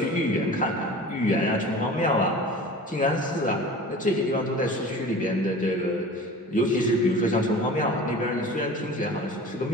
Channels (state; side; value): normal; both; correlation 0.39